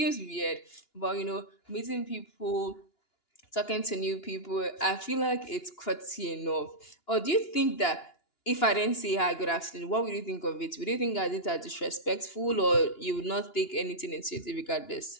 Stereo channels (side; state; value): right; late; 2.9 ms